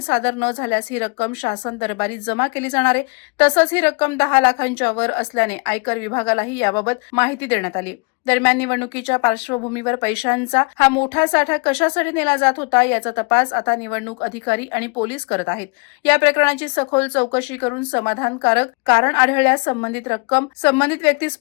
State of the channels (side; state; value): right; quieter; 31.4 dB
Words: न झाल्यास ही रक्कम शासन दरबारी जमा केली जाणार आहे. तसंच ही रक्कम 10 लाखांच्या वर असल्याने आयकर विभागालाही याबाबत माहिती देण्यात आली. दरम्यान निवडणुकीच्या पार्श्वभूमीवर पैशांचा हा मोठा साठा कशासाठी नेला जात होता याचा तपास आता निवडणूक अधिकारी आणि पोलीस करत आहेत. या प्रकरणाची सखोल चौकशी करून समाधानकारक कारण आढळल्यास संबंधित रक्कम संबंधित व्यक्तीस